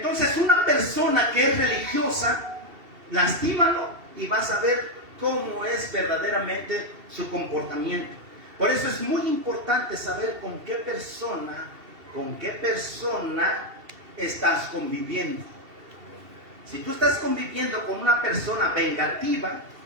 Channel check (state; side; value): late; left; 2.7 ms